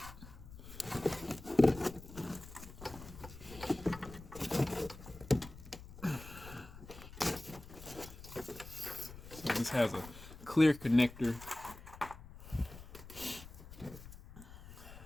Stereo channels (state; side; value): noise; left; rumble, 15 dB below the sound